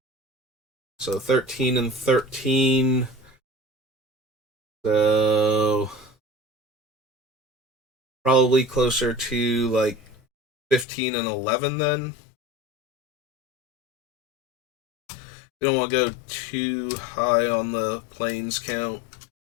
So 13 and 13. So probably closer to like 15 and 11 then. We don't want to go too high on the planes count.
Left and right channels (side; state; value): right; drops out; at 10.9 s